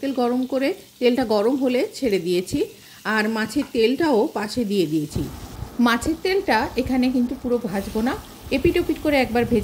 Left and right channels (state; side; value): identical; both; correlation 1.00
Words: তেল গরম করে তেলটা গরম হলে ছেড়ে দিয়েছি, আর মাছের তেলটাও পাশে দিয়ে দিয়েছি। মাছের তেলটা এখানে কিন্তু পুরো ভাজবো না, এপিট ওপিট করে একবার